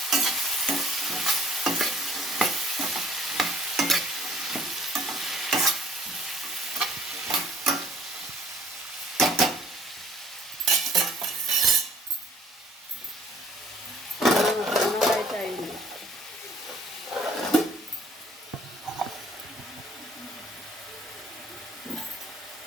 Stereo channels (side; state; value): both; normal; correlation 0.56